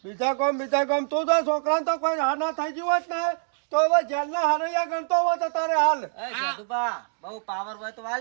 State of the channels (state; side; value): silent; left; digital silence